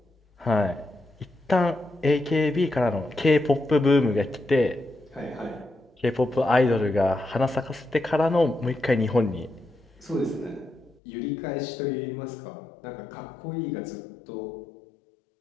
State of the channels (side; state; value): right; drops out; at 11.0 s